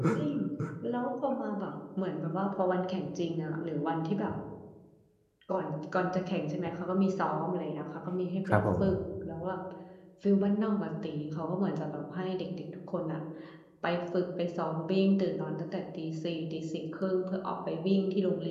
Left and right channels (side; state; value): both; identical; correlation 1.00